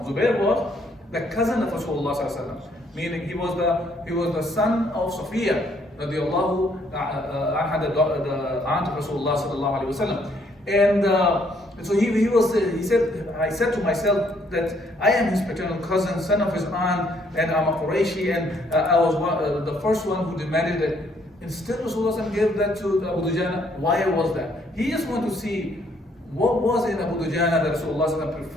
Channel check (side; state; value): both; normal; correlation 0.67